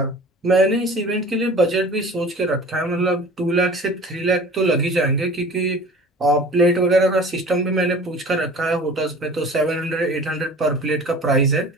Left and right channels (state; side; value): normal; both; correlation 0.43